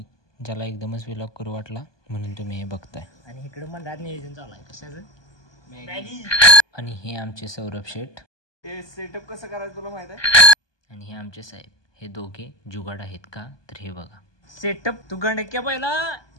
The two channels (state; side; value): late; right; 1.2 ms